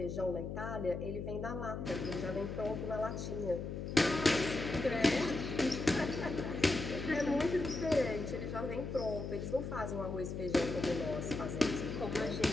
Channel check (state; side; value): noise; left; hum, 5 dB below the sound